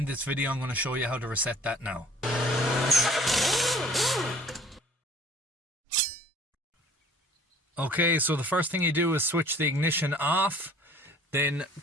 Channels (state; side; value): normal; both; correlation 0.51